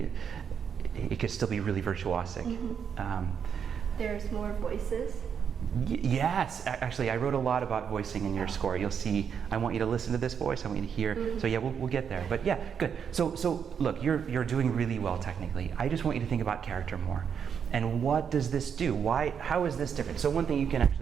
could still be really virtuosic. There's more voices. Yes, actually, I wrote a lot about voicing in your score. You'll see. I want you to listen to this voice. I want you to hear. So yeah, we'll get there. But yeah, good. So look, you're doing really well technically. I just want you to think about character more. And what does this do? How is this different? So one thing you can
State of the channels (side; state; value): left; quieter; 7.3 dB